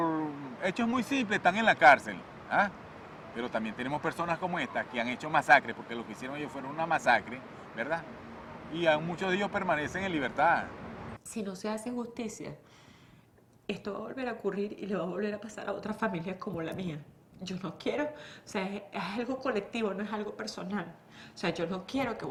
hechos muy simples están en la cárcel, ¿ah? Pero también tenemos personas como esta que han hecho masacres, porque lo que hicieron ellos fueron una masacre, ¿verdad? Y aún muchos de ellos permanecen en libertad. Si no se hace justicia, esto va a volver a ocurrir y le va a volver a pasar a otras familias como la mía. Yo no quiero, o sea, es algo colectivo, no es algo personal. O sea, yo no quiero que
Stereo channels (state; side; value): identical; both; correlation 1.00